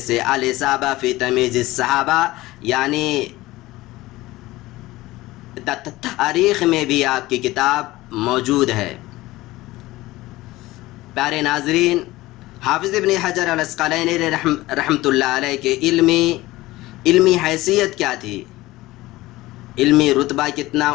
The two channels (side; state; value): right; quieter; 18.4 dB